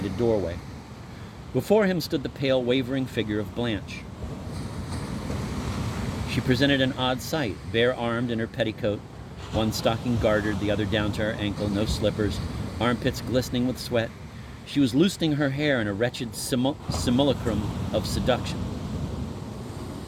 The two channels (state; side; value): identical; both; correlation 1.00